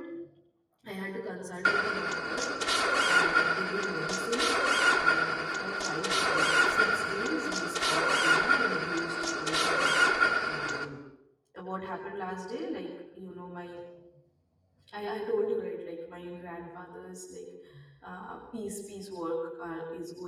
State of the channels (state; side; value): identical; both; correlation 1.00